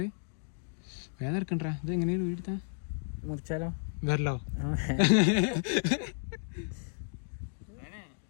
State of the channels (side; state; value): right; silent; digital silence